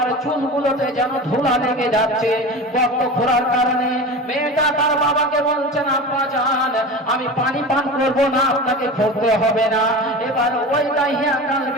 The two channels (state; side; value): normal; both; correlation 0.31